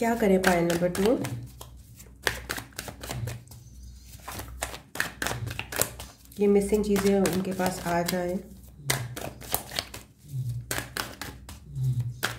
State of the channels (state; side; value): identical; both; correlation 1.00